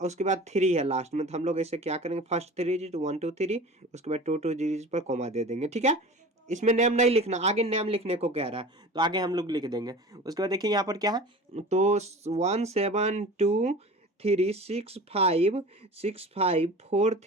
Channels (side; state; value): both; normal; correlation 0.37